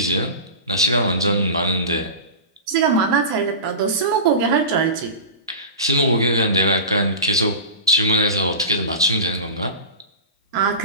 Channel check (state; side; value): inverted; both; correlation -0.30